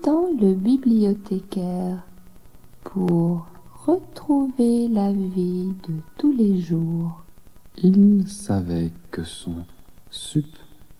le bibliothécaire pour retrouver la vie de tous les jours, Il savait que son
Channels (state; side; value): identical; both; correlation 1.00